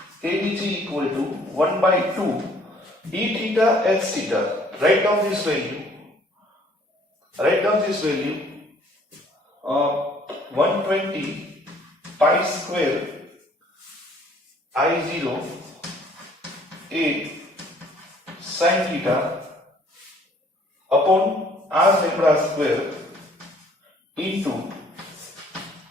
ADG equal to 1 by 2 E theta H theta. Write down this value. 120 pi square I0 A sin theta upon r lambda square into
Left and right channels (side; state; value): both; normal; correlation 0.59